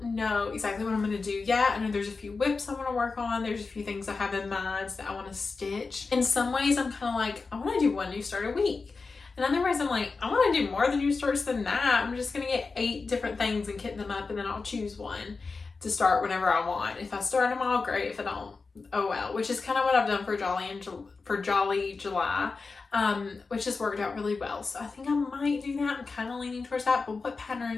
know exactly what I'm going to do yet. I know there's a few whips I want to work on. There's a few things I have in mind that I want to stitch. In some ways, I'm kind of like, I want to do 1 new start a week. In other ways, I'm like, I want to do more than new starts than that. I'm just going to get 8 different things and kit them up, and then I'll choose one to start whenever I want. If I start them all, great. If I don't, oh well. Which is kind of what I've done for Jolly July, which has worked out really well. So I think I might do that. I'm kind of leaning towards that. But what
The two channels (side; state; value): right; quieter; 4.3 dB